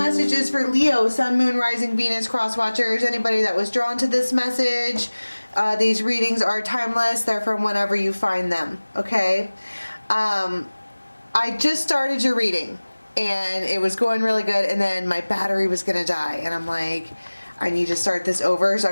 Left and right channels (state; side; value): inverted; both; correlation -1.00